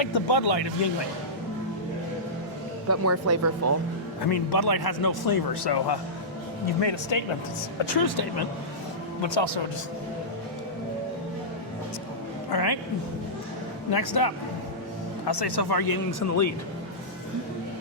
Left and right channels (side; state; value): both; normal; correlation -0.15